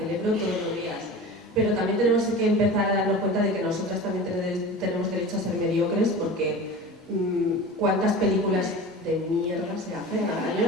todos los días. Pero también tenemos que empezar a darnos cuenta de que nosotras también tenemos derecho a ser mediocres, porque ¿cuántas películas de mierda se hacen al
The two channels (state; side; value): normal; both; correlation 0.34